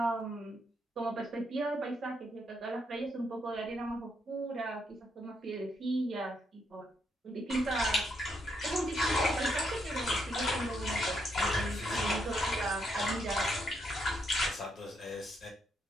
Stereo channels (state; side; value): normal; both; correlation 0.77